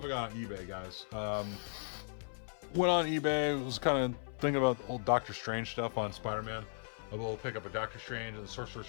I got on eBay, guys. Went on eBay, was kind of thinking about old Doctor Strange stuff on Spider-Man. I will pick up a Doctor Strange and the Sorcerer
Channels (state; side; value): silent; right; 53 dB below the other